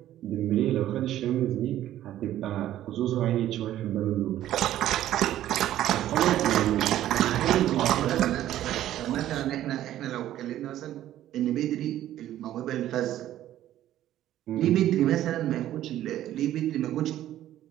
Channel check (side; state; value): left; quieter; 12.9 dB